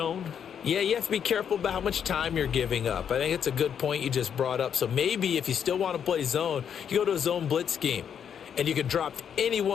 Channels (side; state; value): right; quieter; 8.1 dB